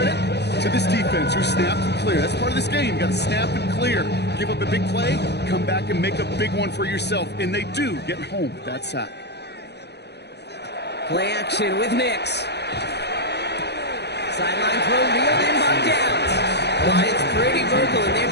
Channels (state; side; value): late; right; 0.49 ms